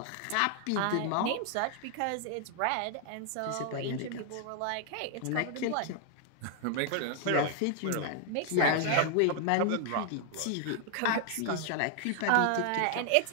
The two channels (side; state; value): both; different; correlation 0.00